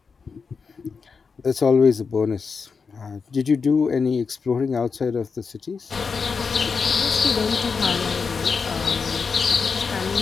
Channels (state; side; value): quieter; right; 5.3 dB